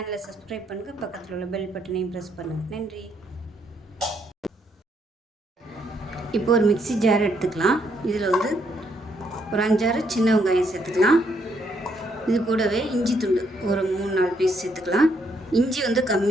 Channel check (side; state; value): both; normal; correlation 0.73